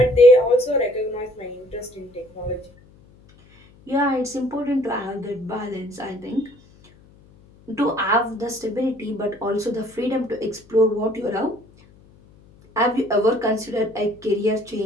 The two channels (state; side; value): noise; left; hum, 27 dB below the sound